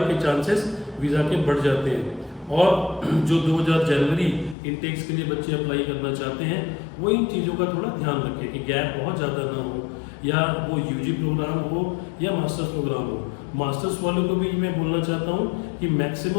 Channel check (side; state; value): right; drops out; at 4.5 s